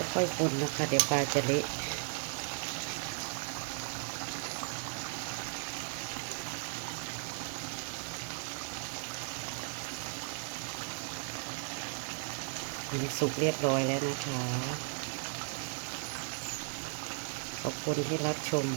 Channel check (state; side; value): silent; left; 54 dB below the other